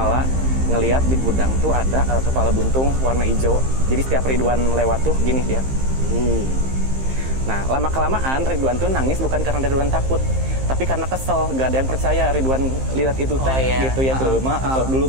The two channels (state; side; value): late; left; 15 ms